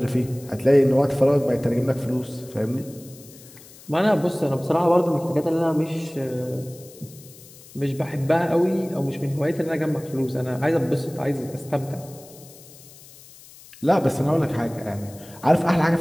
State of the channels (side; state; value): left; noise; hiss, 21 dB below the sound